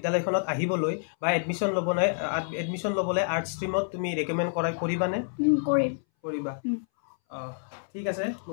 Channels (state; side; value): silent; right; 59 dB below the other